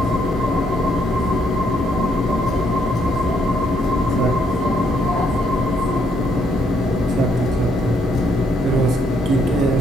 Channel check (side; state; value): both; normal; correlation 0.72